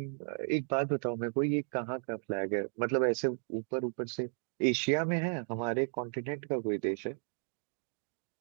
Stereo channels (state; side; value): silent; left; 55 dB below the other